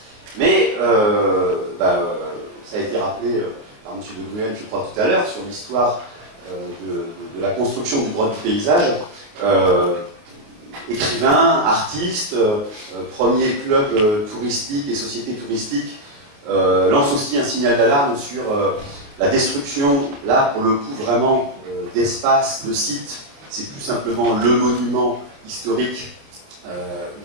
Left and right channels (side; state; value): left; late; 28 ms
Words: Mais ça a été rappelé par M. de Gruel, je crois, tout à l'heure, sur l'histoire de la construction du droit du paysage. Écrivain, artiste, premier club touristique et société touristique, lance aussi un signal d'alarme sur la destruction, là, pour le coup, vraiment, d'espaces, de sites. C'est plus simplement le monument historique,